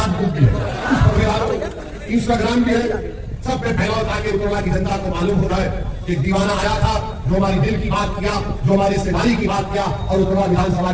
बुक भी है, इंस्टाग्राम भी है, सब पे फैलाओ ताकि उत्तरला की जनता को मालूम हो जाए कि दीवाना आया था जो हमारी दिल की बात किया, जो हमारी सेवारी की बात किया और उत्तरला विधानसभा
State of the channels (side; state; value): both; identical; correlation 1.00